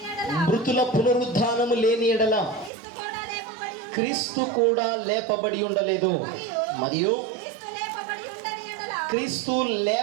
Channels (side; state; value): left; drops out; at 2.7 s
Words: మృతుల పునరుద్ధానము లేని ఎడల క్రీస్తు కూడా లేపబడి ఉండలేదు. మరియు క్రీస్తు